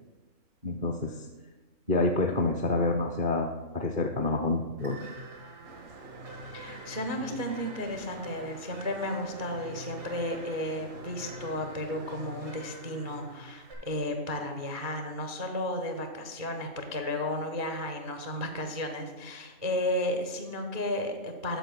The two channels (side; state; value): left; late; 2.4 ms